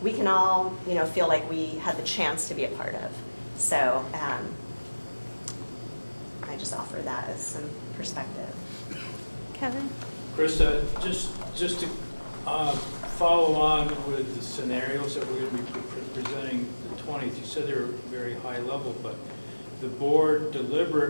we can all, feel like we had the chance to be a part of. So I just offer that as some perspective. Kevin? Krista, just to follow on with the scenarios that we're going to be presenting the 20th, you said they were very high level, but the board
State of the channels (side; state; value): both; inverted; correlation -1.00